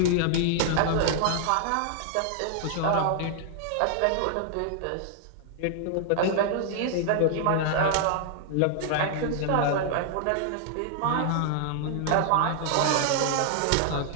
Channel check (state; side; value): different; both; correlation -0.01